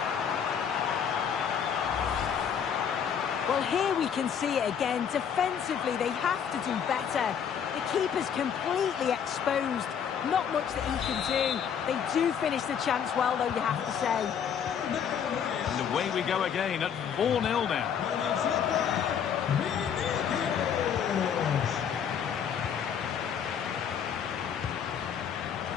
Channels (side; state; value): right; quieter; 7.9 dB